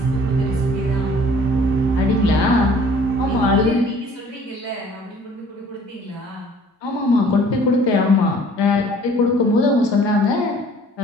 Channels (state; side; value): normal; both; correlation 0.53